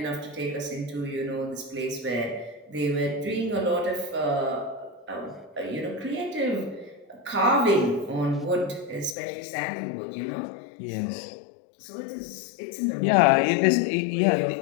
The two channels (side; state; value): right; drops out; at 9.2 s